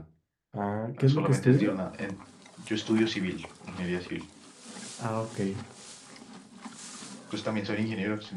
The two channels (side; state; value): both; identical; correlation 1.00